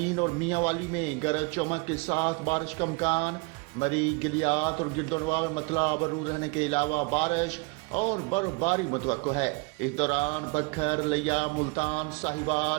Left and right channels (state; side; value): quieter; left; 28.9 dB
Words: और मियांवाली में गरज चमक के साथ बारिश का इम्कान। मरी, गिलियात और गिरदोनवा में मतला अबरूद रहने के अलावा बारिश और बर्फबारी मुतवक्को है। इस दौरान बखर, लिया, मुल्तान,